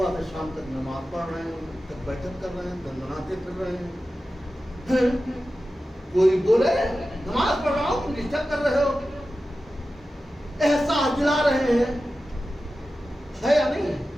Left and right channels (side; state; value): both; normal; correlation 0.93